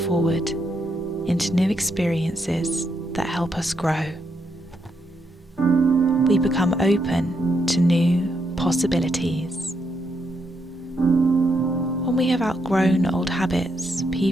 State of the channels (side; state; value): both; normal; correlation 0.79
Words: into new experiences that help us grow. We become open to new possibilities. When we have outgrown old habits,